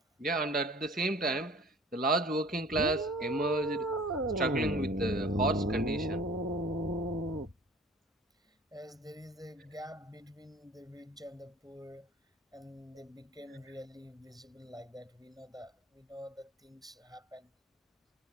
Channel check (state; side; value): normal; both; correlation 0.47